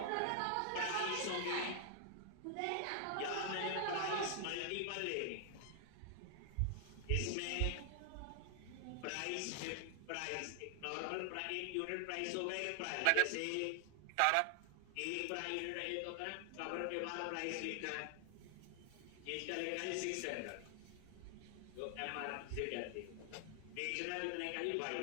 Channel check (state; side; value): different; both; correlation 0.00